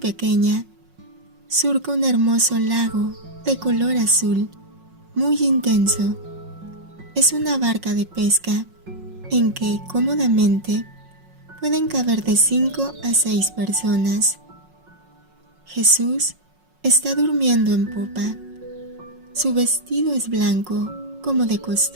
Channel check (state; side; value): late; left; 5.5 ms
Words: surca un hermoso lago de color azul, muy intenso. Es una barca de pesca en que cómodamente pueden caber de 5 a 6 personas. Jesús está durmiendo en popa. Su vestido es blanco, como de